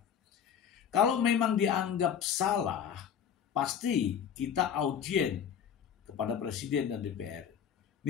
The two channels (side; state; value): right; quieter; 8.3 dB